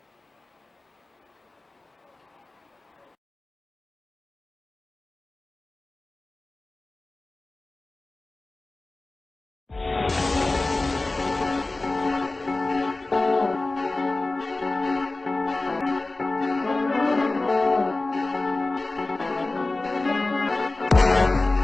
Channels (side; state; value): right; quieter; 3.1 dB